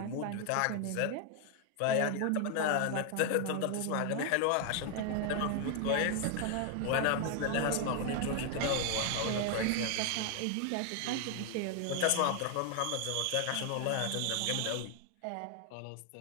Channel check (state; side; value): different; both; correlation 0.00